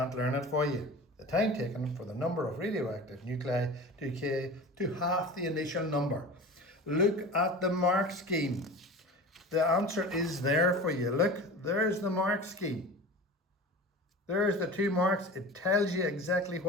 learn it for you. The time taken for the number of radioactive nuclei to decay to half the initial number. Look at the mark scheme. The answer is there for you. Look, there's the mark scheme. There's the 2 marks. It tells you exactly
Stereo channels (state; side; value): normal; both; correlation 0.35